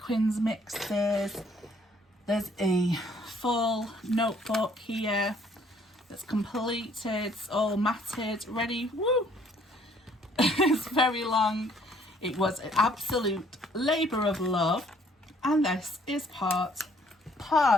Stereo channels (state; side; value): normal; both; correlation 0.62